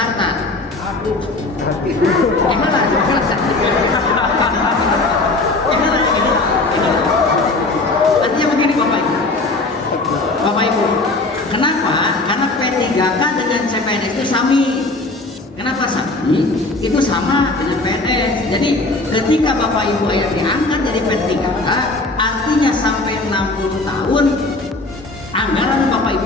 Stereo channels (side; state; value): right; quieter; 3.2 dB